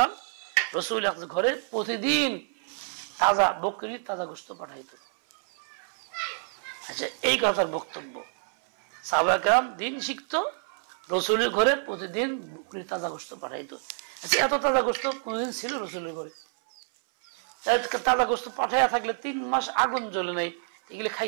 রাসূল ঘরে প্রতিদিন তাজা বকরি, তাজা গোশত পাঠাইতো। আচ্ছা, এই কথার বক্তব্য, সাহাবায়ে কেরাম দিন শিখতো, রাসূলের ঘরে প্রতিদিন বকরি তাজা গোশত পাঠাইতো। আচ্ছা, এত তাজা গোশত কোনদিন ছিল রাসূলের ঘরে? তাজা গোশত পাঠাইয়া থাকলে 3 মাস আগুন জ্বলে নাই, এগুলো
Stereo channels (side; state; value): left; silent; 59 dB below the other